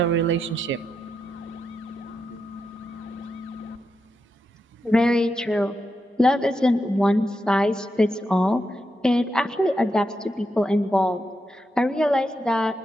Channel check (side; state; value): both; normal; correlation 0.85